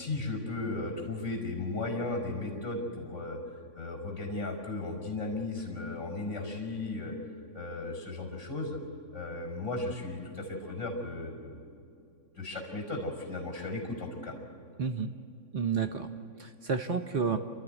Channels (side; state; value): left; late; 3.5 ms